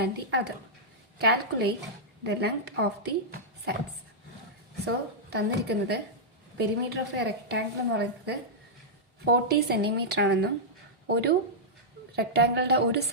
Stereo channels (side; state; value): both; normal; correlation -0.09